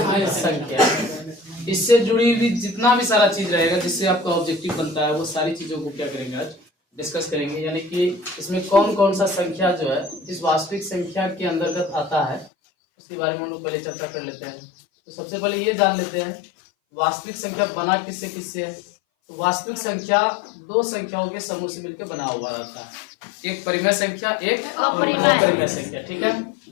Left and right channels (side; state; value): right; drops out; at 12.5 s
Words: संख्या। इससे जुड़ी हुई जितना भी सारा चीज रहेगा जिससे आपका ऑब्जेक्टिव बनता है वो सारी चीजों को क्या करेंगे आज डिस्कस करेंगे। यानी कि इसमें कौन कौन सा संख्या जो है इस वास्तविक संख्या के अंतर्गत आता है उसके बारे में हम लोग पहले चर्चा कर लेते हैं। तो सबसे पहले ये जान लेते हैं वास्तविक संख्या बना किससे किससे है। तो वास्तविक संख्या दो संख्याओं के समूह से मिलकर बना हुआ रहता है, एक परिमेय संख्या एक अपरिमेय संख्या। ठीक है,